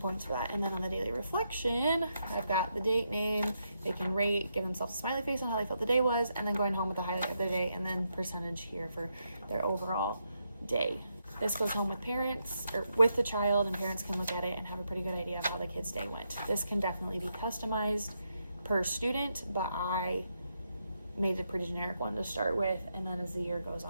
for that. And then on the daily reflection, I've got the date, name, they can rate, give themselves a smiley face on how they felt the day was, and then going home with the highlight of their day, and then percentage here for their overall day. This goes home with parents or with the child, and parents can look at it and have a pretty good idea of how the kid's day went. This can definitely be customized per student, but I made a pretty generic one to start with, and then as the year goes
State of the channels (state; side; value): inverted; both; correlation -0.81